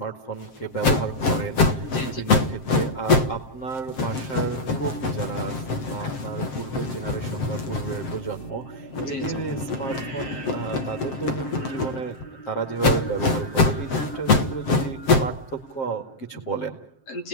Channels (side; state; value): right; late; 7.6 ms